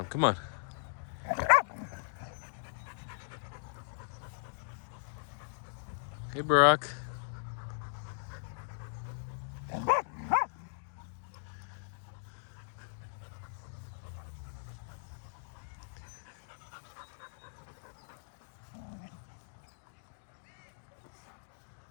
Come on. Hey, Barack.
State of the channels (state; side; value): silent; right; digital silence